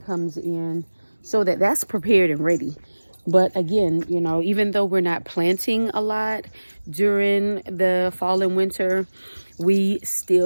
comes in so that that's prepared and ready. But again, you know, even though we're not planting a lot during the fall and winter, we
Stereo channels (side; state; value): both; inverted; correlation -1.00